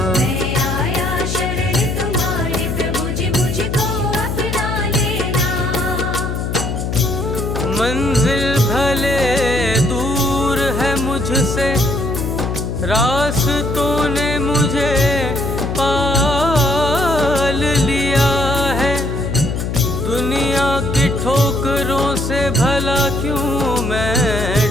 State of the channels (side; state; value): left; noise; hum, 3 dB below the sound